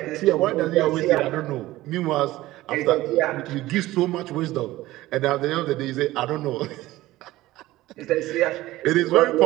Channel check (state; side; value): quieter; left; 17.1 dB